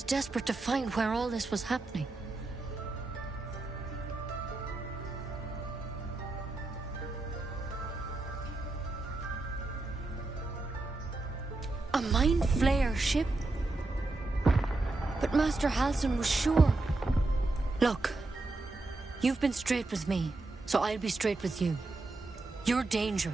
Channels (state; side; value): quieter; left; 3.1 dB